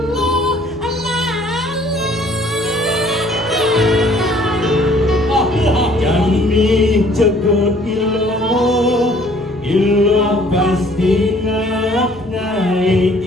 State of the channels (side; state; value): right; noise; hum, 23 dB below the sound